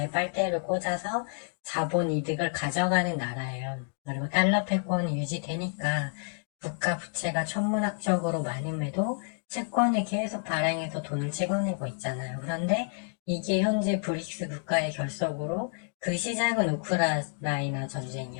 빨대를 꽂아서 자본 이득을 가져가는 나라예요. 그리고 달러 패권이 유지되니까 국가 부채가 천문학적으로 많음에도 채권을 계속 발행해서 돈을 찍어내고 있잖아요. 그런데 이게 현재 브릭스 국가의 결속으로 그 시작은 우크라이나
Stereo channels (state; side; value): silent; right; 58 dB below the other